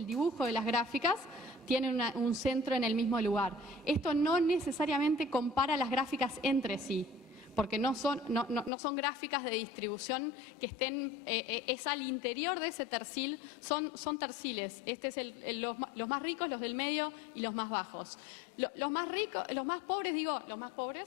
dibujo de las gráficas, tienen un centro en el mismo lugar. Esto no necesariamente compara las gráficas entre sí, porque no son gráficas de distribución que estén, es al interior de ese tercil, son terciles. Este es los más ricos, los del medio y los más bajos. Los más ricos, los más pobres,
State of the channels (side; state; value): right; drops out; at 8.7 s